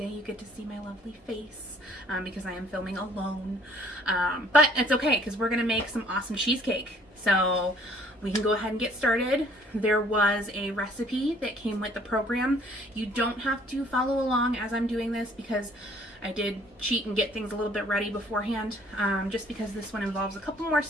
you get to see my lovely face because I am filming alone. But it's okay because we're going to make some awesome cheesecake. So we can go ahead and get started. There was a recipe that came with the program. You don't have to follow along as I'm doing this because I did cheat and get things a little bit ready beforehand, just because this one involves a couple more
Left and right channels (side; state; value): both; normal; correlation 0.58